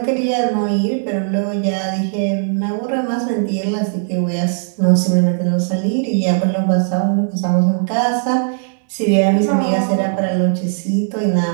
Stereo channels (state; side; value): silent; left; digital silence